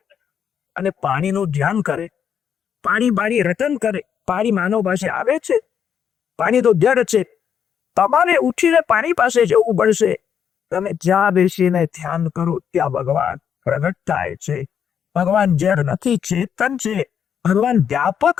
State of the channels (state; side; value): quieter; right; 8.1 dB